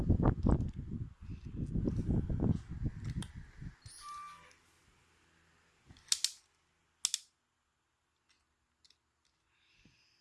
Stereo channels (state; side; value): identical; both; correlation 1.00